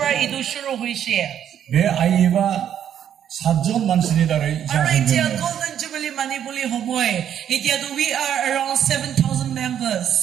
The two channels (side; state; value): left; quieter; 9.6 dB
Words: itu Shuru Hoishe. बे आइयेबा 7জন मानसिनि दारै Alright, जादों Golden Jubilee Manipuli Homoy. We are around 7,000